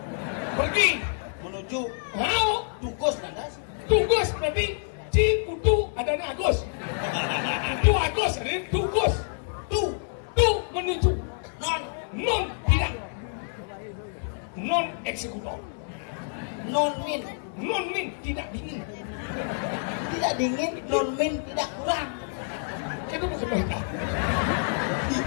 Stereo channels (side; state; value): right; silent; digital silence